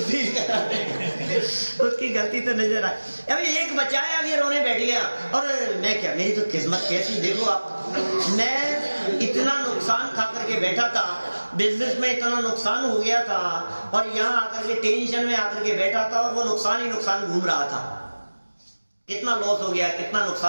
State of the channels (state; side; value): inverted; both; correlation -1.00